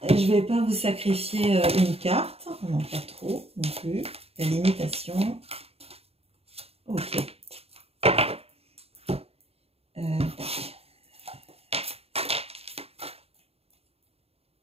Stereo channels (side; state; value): left; late; 0.29 ms